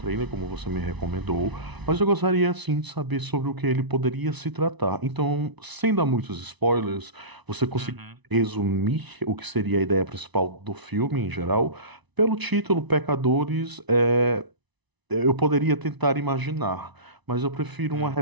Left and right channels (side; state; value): left; late; 1.0 ms